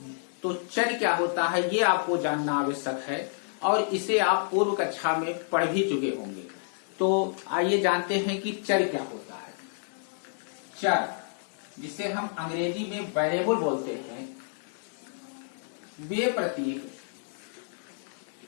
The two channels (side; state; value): right; silent; digital silence